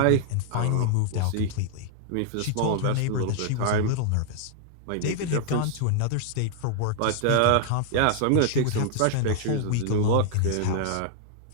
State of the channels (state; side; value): different; both; correlation -0.01